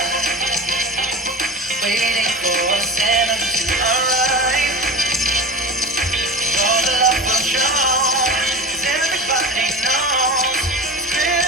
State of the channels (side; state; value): both; normal; correlation 0.31